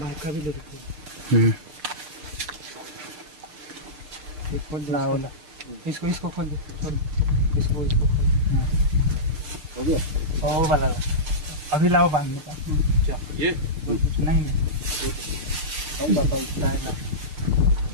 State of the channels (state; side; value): late; left; 6.6 ms